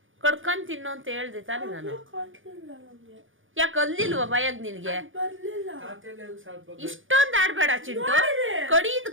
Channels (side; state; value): left; late; 0.58 ms